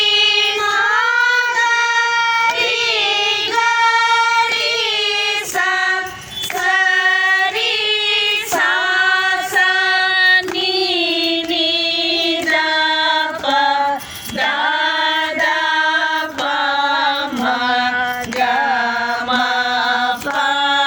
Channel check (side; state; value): both; identical; correlation 1.00